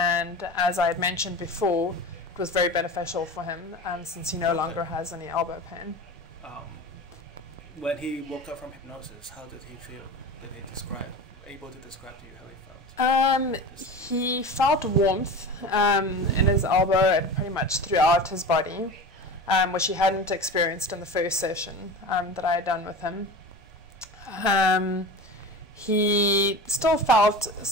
as I had mentioned before, it was very beneficial for him since he no longer has any elbow pain. When he woke up from hypnosis, how did he feel? Did he able to describe to you how he felt? He felt warmth in his elbow and pretty much throughout his body, which he hadn't experienced in the first session that I had done with him. He still felt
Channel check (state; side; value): normal; both; correlation 0.31